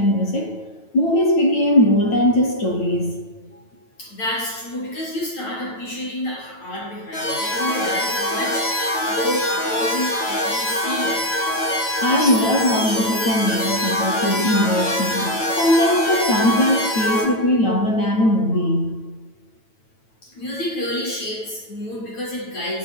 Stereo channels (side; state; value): right; late; 9.1 ms